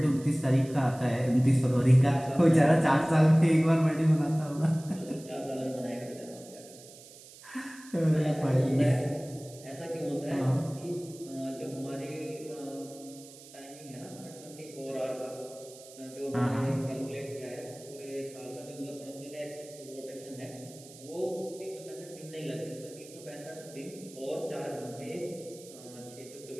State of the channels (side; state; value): right; noise; hiss, 19 dB below the sound